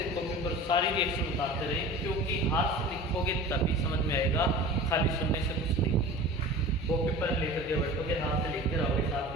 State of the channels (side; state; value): both; normal; correlation 0.37